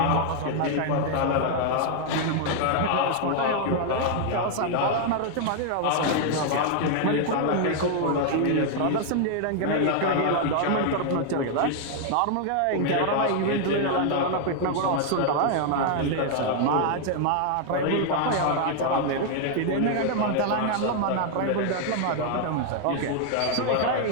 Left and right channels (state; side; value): different; both; correlation 0.00